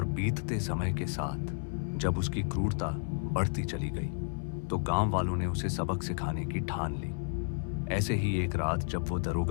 बीतते समय के साथ जब उसकी क्रूरता बढ़ती चली गई तो गांव वालों ने उसे सबक सिखाने की ठान ली। ऐसे ही एक रात जब वो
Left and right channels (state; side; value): silent; right; 56 dB below the other